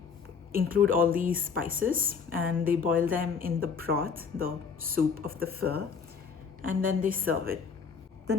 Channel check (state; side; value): quieter; right; 5.9 dB